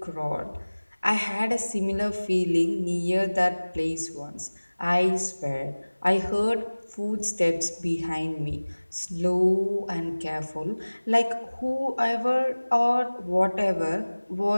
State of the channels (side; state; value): both; inverted; correlation -1.00